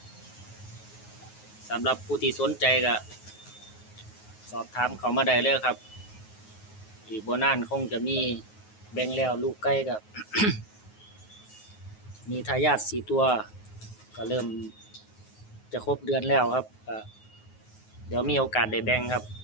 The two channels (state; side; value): late; right; 9.4 ms